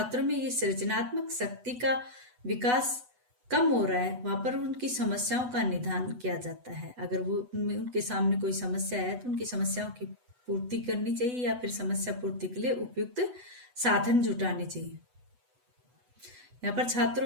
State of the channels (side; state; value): left; late; 8.1 ms